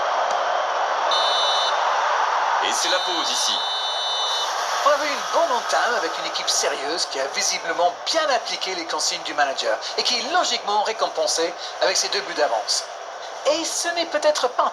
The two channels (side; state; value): both; identical; correlation 1.00